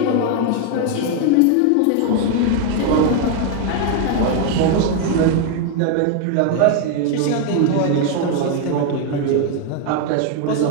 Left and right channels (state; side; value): different; both; correlation 0.01